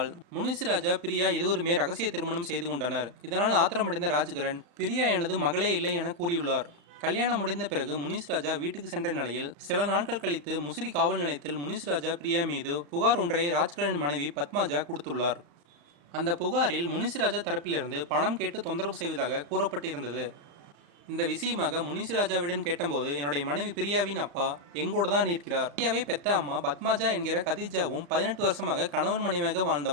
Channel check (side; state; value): left; late; 35 ms